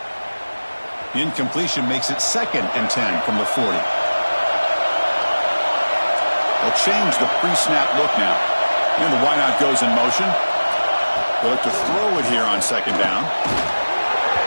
The incompletion makes it 2nd and 10 from the 40. They'll change the pre-snap look now. And the wideout goes in motion. They'll look to throw it here on second down.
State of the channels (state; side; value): inverted; both; correlation -1.00